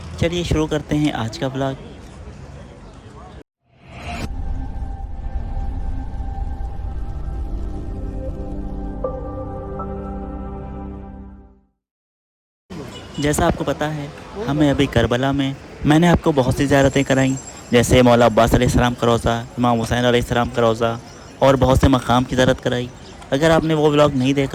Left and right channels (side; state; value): both; identical; correlation 1.00